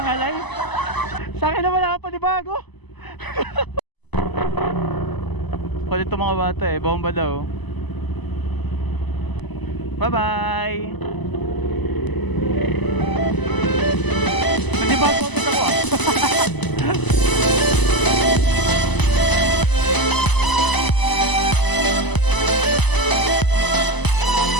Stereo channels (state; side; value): late; right; 1.0 ms